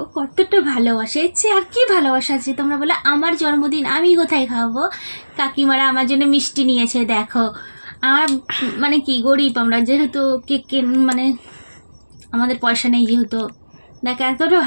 কতটা ভালোবাসে, এর চেয়ে আর কি ভালোবাসা আছে? তোমরা বলে আমার জন্মদিন আমি কোথায় খাওয়াবো, কাকিমারা আমার জন্য মিষ্টি নিয়েছে। দেখো আমার মানে কি গরিব আমরা, যেহেতু কেক মানে আমাদের পয়সা নেই, যেহেতু দেখো এতটা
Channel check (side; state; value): both; inverted; correlation -1.00